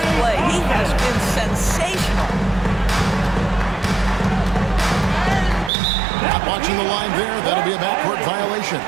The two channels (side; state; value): left; drops out; at 5.7 s